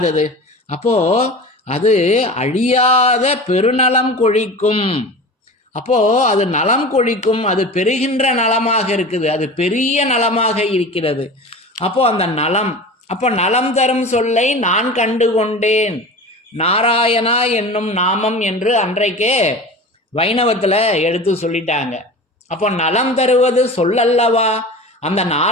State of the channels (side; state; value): both; normal; correlation 0.34